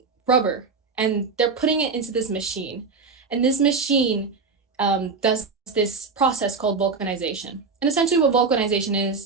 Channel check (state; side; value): quieter; left; 4.7 dB